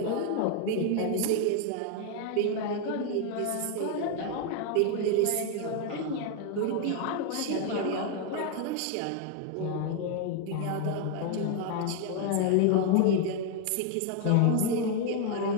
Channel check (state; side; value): different; both; correlation 0.01